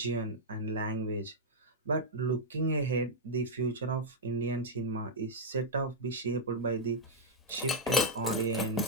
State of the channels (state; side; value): normal; both; correlation -0.03